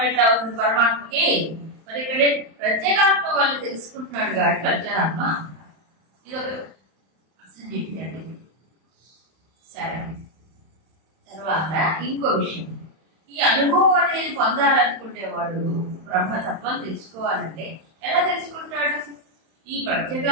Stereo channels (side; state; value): left; late; 31 ms